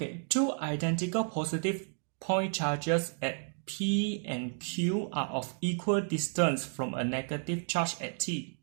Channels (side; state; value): left; silent; 56 dB below the other